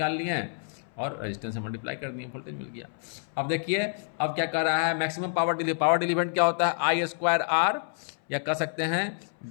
लिए हैं और रेजिस्टेंस से मल्टीप्लाई कर दिए, वोल्टेज मिल गया। अब देखिए अब क्या कर रहा है, मैक्सिमम पावर डिलीवर्ड क्या होता है, I²R, या कह सकते हैं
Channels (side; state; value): right; silent; 59 dB below the other